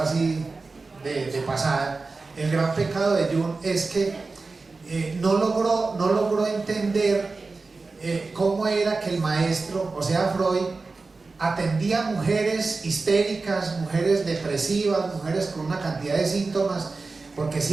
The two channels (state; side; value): quieter; left; 3.9 dB